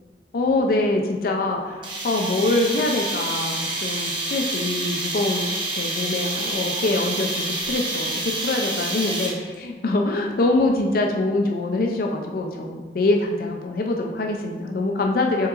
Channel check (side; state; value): both; normal; correlation 0.39